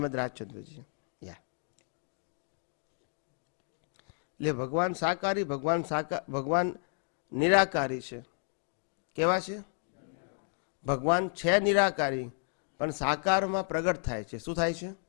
રાજચંદ્રજી. એટલે ભગવાન સાકારી, ભગવાન નિરાકારી છે. કેવા છે? ભગવાન છે નિરાકારી પણ સાકારમાં પ્રગટ થાય છે. શું થાય છે?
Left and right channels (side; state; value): right; silent; 56 dB below the other